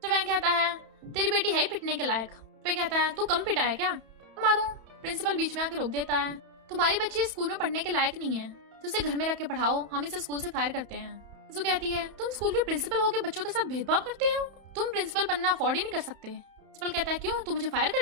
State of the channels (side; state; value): left; late; 31 ms